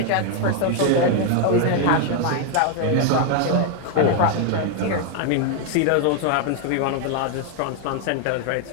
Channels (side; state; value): both; different; correlation 0.00